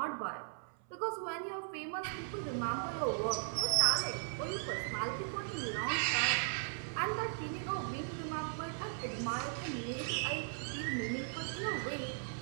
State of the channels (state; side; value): silent; left; 53 dB below the other